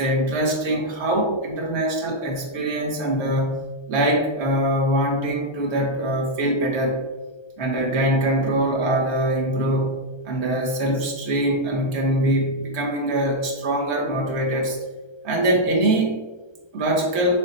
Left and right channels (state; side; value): late; right; 1.3 ms